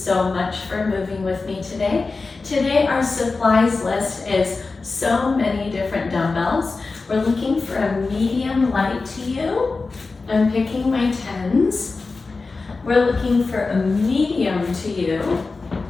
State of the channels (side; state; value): right; quieter; 3.9 dB